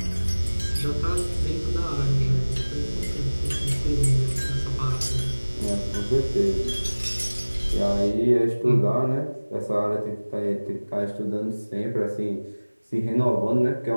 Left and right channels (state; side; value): inverted; both; correlation -1.00